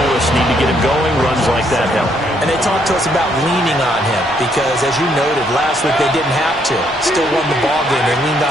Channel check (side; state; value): left; noise; rumble, 24 dB below the sound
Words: us need to get him going. Runs like that help. And they talked to us about leaning on him because, as you noted, last week they didn't have to. Still won the ball game. They leaned